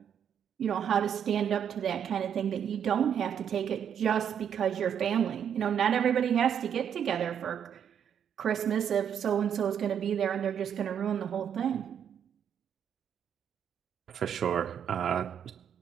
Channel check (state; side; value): quieter; left; 8.5 dB